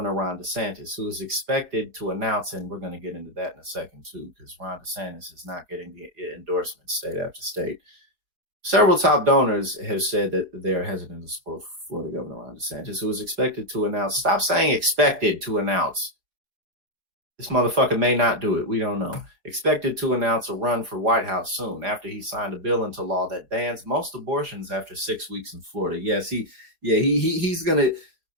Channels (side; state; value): left; late; 4.8 ms